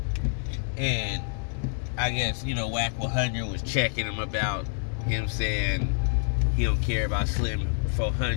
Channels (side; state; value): right; silent; digital silence